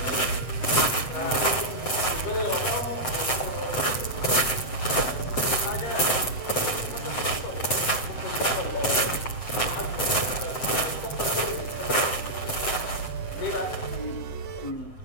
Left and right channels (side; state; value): right; late; 7.8 ms